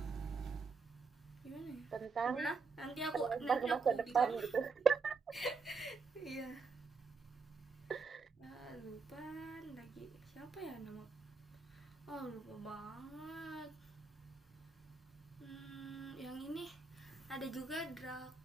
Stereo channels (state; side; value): quieter; left; 4.8 dB